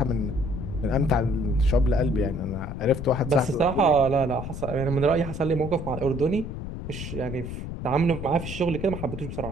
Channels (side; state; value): left; noise; rumble, 7 dB below the sound